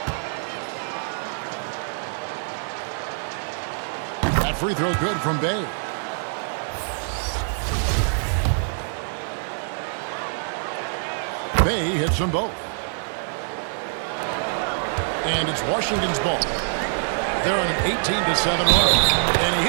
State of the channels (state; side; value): silent; left; 62 dB below the other